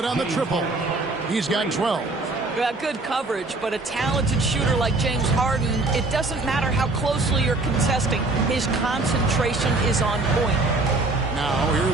on the triple. He's got 12. Good coverage, but a talented shooter like James Harden, it doesn't matter how closely you're contesting. His concentration is on point. Now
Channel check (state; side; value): quieter; left; 3.2 dB